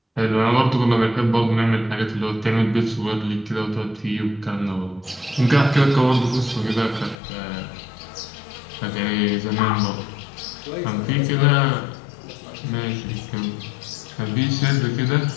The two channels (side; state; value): right; drops out; at 7.2 s